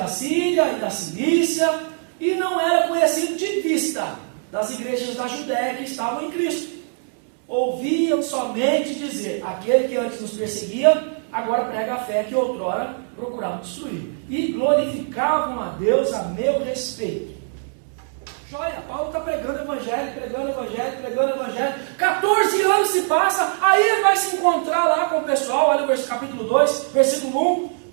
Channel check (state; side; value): silent; left; digital silence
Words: Síria e da Cilícia, e não era conhecido de vista das igrejas da Judéia que estavam em Cristo. Ouviam somente dizer: aquele que antes nos perseguia, agora prega a fé que outrora procurava destruir. E glorificavam a Deus a meu respeito. Joia, Paulo está pregando evangelho, pregando evangelho, pregando evangelho. 14 anos se passa, aí ele vai se encontrar lá com o pessoal. Olha o capítulo 2, versículo 1.